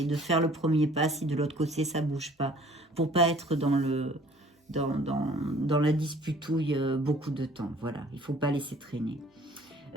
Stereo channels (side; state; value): both; normal; correlation 0.54